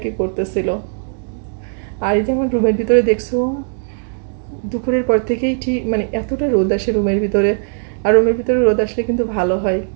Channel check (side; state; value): left; silent; digital silence